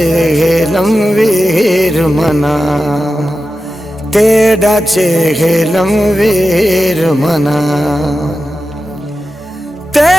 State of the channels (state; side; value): normal; both; correlation 0.92